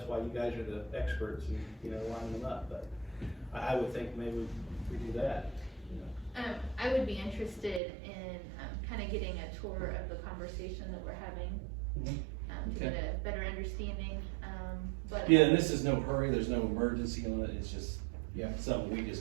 why you guys are the experts and, you know, line them up, but I would think maybe we do that, you know. I would be interested in, kind of getting a tour of the conversation that we're having, Mhm. to get a better understanding, but. Yeah, and this is no hurry, there's no emergency on it, it's just Yeah. something we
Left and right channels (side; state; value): left; drops out; at 7.8 s